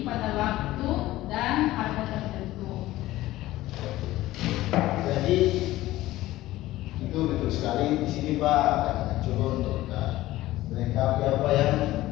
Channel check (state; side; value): quieter; right; 16.4 dB